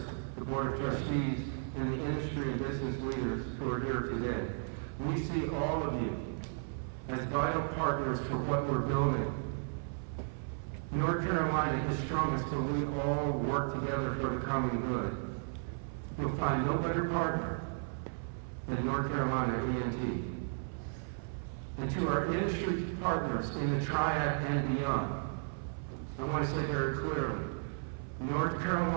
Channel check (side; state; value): left; silent; 55 dB below the other